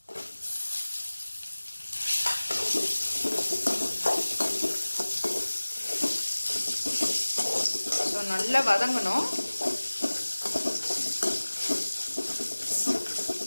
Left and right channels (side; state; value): both; inverted; correlation -1.00